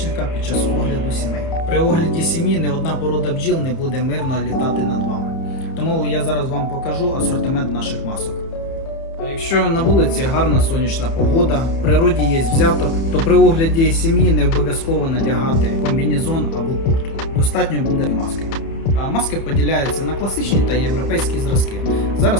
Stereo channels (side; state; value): right; late; 30 ms